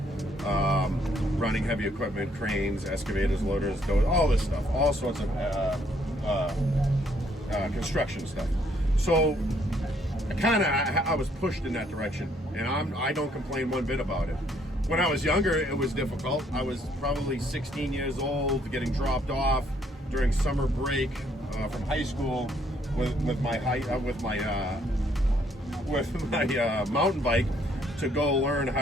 running heavy equipment, cranes, excavators, loaders, all this stuff, all sorts of construction stuff. So I was pushed in that direction, and I don't complain one bit about it. When I was younger, it was difficult. I was probably 16 years old, getting dropped off during summer break from high school with my mountain bike to go learn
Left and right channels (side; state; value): both; normal; correlation 0.68